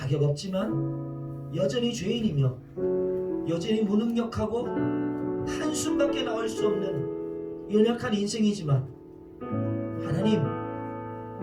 없지만 여전히 죄인이며 여전히 무능력하고 한숨밖에 나올 수 없는 연약한 인생이지만 하나님,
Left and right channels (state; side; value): identical; both; correlation 1.00